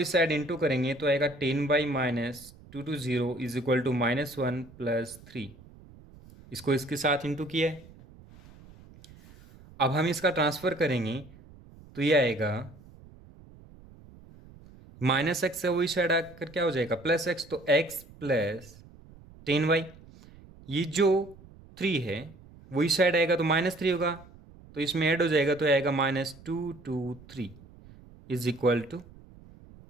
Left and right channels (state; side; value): noise; right; rumble, 22 dB below the sound